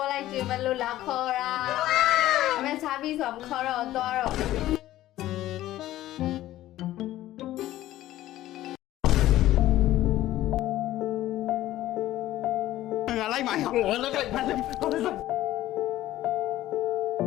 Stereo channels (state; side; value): quieter; right; 14.7 dB